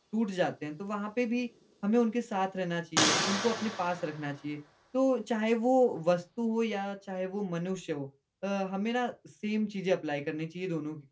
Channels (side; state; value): both; identical; correlation 1.00